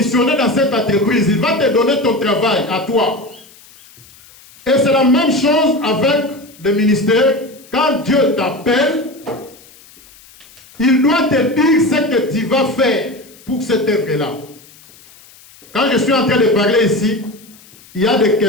dans cette entreprise. Il va te donner ton travail à toi. Et c'est la même chose avec le ministère. Quand Dieu t'appelle, il doit te dire ce que tu vas faire pour cette œuvre-là. Quand je suis en train de parler ici, il y a des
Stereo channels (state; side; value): noise; left; hiss, 25 dB below the sound